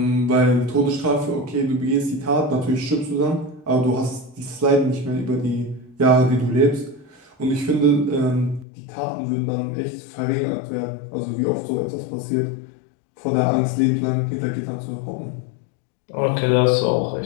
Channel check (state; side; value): drops out; right; at 8.7 s